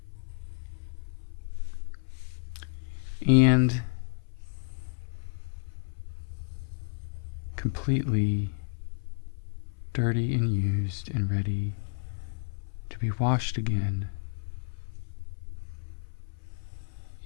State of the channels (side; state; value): right; silent; 57 dB below the other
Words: and completely dirty and used and ready to be washed again